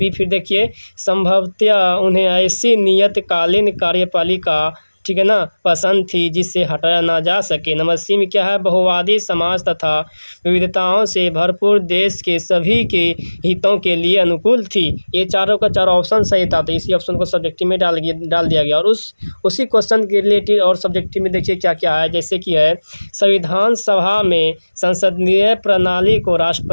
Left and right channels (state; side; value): inverted; both; correlation -1.00